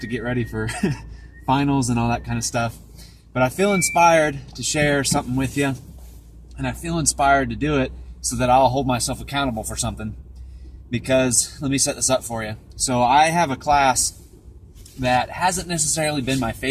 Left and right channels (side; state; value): both; identical; correlation 1.00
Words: get ready for finals and all that kind of stuff. But I feel inspired to share something with you, and I feel inspired to do it so that I'll hold myself accountable for something. Because, let me set this up for you. So I have a class that hasn't necessarily been my